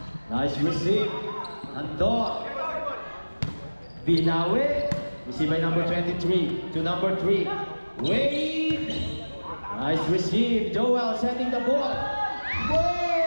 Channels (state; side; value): inverted; both; correlation -1.00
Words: Nice receive. Andor. Binawi. Receive by number 23 to number 3. Wade. Nice receive. Joel setting the ball. Boy!